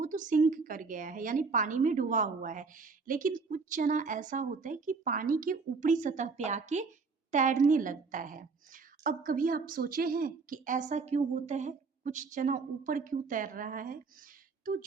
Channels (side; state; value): left; quieter; 4.6 dB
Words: तो सिंक कर गया है, यानी पानी में डूबा हुआ है। लेकिन कुछ चना ऐसा होता है कि पानी के ऊपरी सतह पे आके तैरने लगता है। अब कभी आप सोचे हैं कि ऐसा क्यों होता है, कुछ चना ऊपर क्यों तैर रहा है? तो